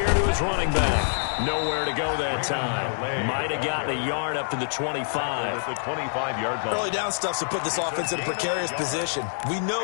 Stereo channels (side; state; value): right; silent; digital silence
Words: to his running back. Nowhere to go that time. Might have gotten a yard up to the 25. The 25-yard line. Early down stuff to put this offense in a precarious position. We